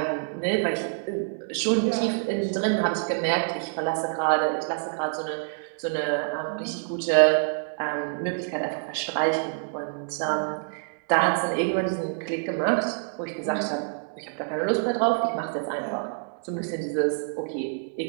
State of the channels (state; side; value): silent; left; digital silence